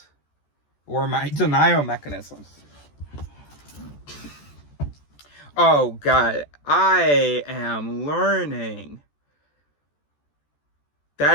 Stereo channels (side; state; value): right; late; 14 ms